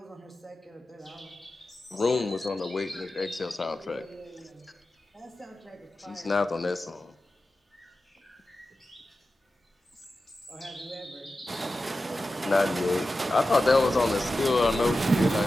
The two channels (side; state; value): both; normal; correlation 0.93